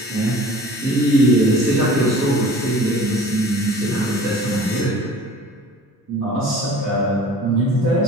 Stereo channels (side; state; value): both; normal; correlation 0.44